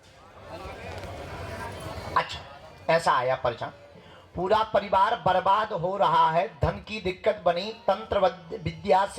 अच्छा, ऐसा आया परिचय। पूरा परिवार बर्बाद हो रहा है, धन की दिक्कत बनी, तंत्र विद्या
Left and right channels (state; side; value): identical; both; correlation 1.00